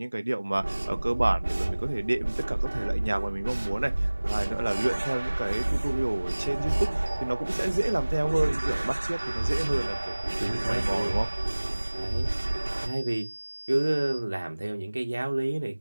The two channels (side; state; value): both; inverted; correlation -1.00